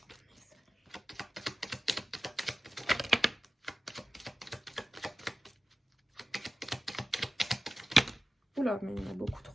Oula, mais il y en a beaucoup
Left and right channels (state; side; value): normal; both; correlation 0.95